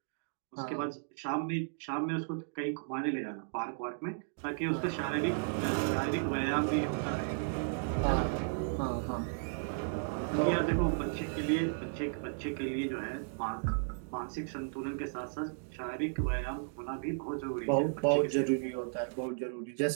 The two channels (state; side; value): silent; left; digital silence